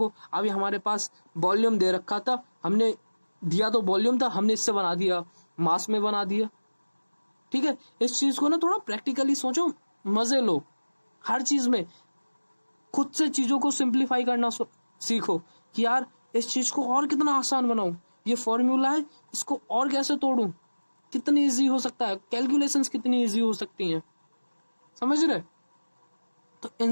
अभी हमारे पास वॉल्यूम दे रखा था, हमने दिया तो वॉल्यूम था, हमने इससे बना दिया, मास में बना दिया, ठीक है। इस चीज को ना थोड़ा प्रैक्टिकली सोचो, मजे लो, हर चीज में खुद से चीजों को सिंप्लीफाई करना सीखो कि यार इस चीज को और कितना आसान बनाऊं, ये फॉर्मूला है इसको और कैसे तोड़ूं, कितनी इजी हो सकता है, कैलकुलेशंस कितनी इजी हो सकती हैं, समझ रहे। तो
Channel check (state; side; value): inverted; both; correlation -1.00